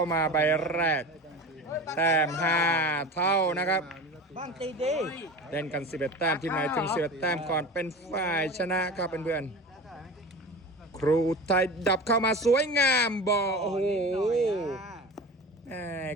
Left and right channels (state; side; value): normal; both; correlation 0.33